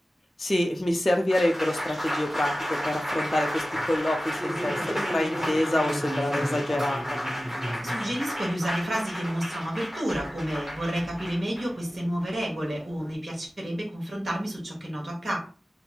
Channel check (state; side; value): normal; both; correlation 0.95